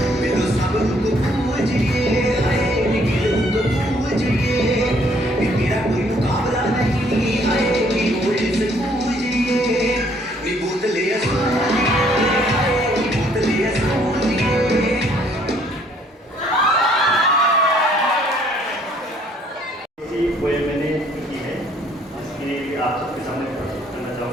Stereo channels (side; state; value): both; normal; correlation 0.63